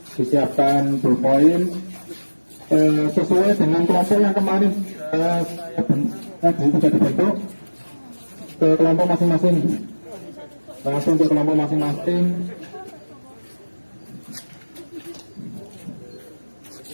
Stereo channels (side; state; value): both; inverted; correlation -1.00